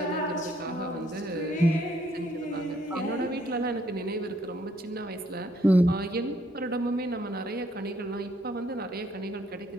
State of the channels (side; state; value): both; normal; correlation 0.68